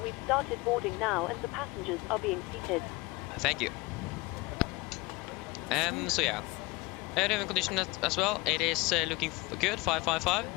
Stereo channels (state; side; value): quieter; right; 23.4 dB